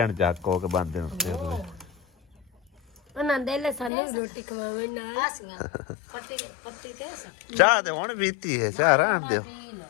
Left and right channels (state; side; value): drops out; right; at 3.9 s